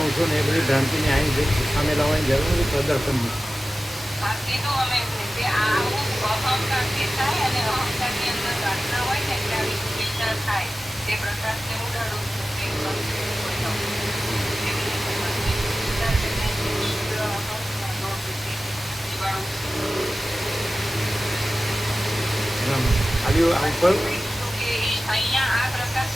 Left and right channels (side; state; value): both; normal; correlation 0.95